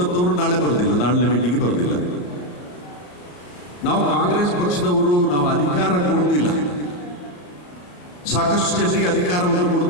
ನಾಳೆ ಬರೋದಿಲ್ಲ, ನಾಳೆ ಮೀಟಿಂಗಿಗೆ ಬರೋದಿಲ್ಲ. ನಾವು ಕಾಂಗ್ರೆಸ್ ಪಕ್ಷದವರು ನಾವು ಅಧಿಕಾರ ಕೊಡೋದಿಲ್ಲ, ಸಾಕಷ್ಟು ಜನರಿಗೆ ಅಧಿಕಾರವನ್ನು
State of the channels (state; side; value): late; right; 34 ms